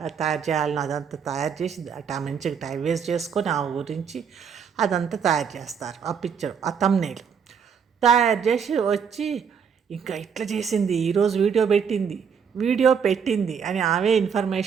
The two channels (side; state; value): left; quieter; 6.9 dB